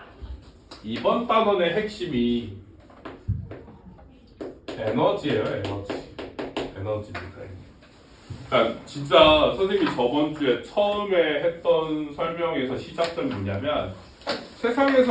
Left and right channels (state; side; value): identical; both; correlation 1.00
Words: 이번 단원의 핵심이 에너지예요, 에너지입니다. 그러니까 진짜 선생님이 저번 주에 처음에 했던 설명에서 시작점이 뭐냐면